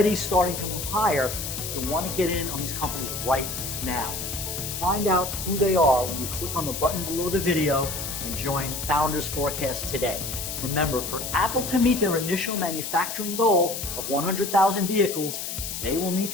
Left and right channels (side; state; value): left; noise; hiss, 5 dB below the sound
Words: starting to move higher, you want to get in on these companies right now. Find out who they are when you click on the button below the video and join Founders Forecast today. Remember, for Apple to meet their initial manufacturing goal of 100,000 vehicles, they will need